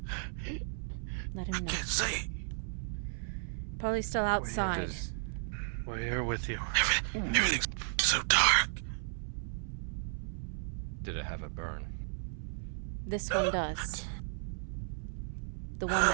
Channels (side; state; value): left; silent; 55 dB below the other